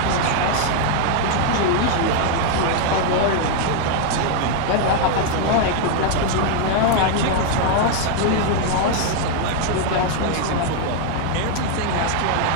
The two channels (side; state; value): both; different; correlation 0.00